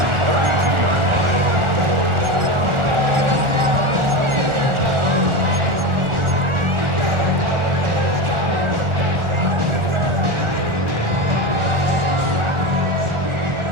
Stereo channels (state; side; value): late; left; 1.4 ms